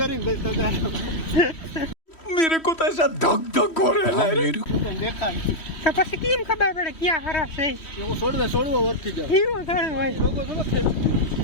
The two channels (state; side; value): late; right; 3.1 ms